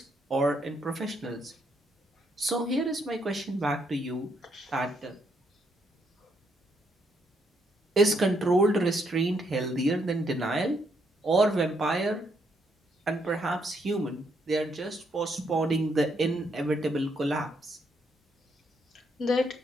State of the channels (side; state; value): both; normal; correlation 0.74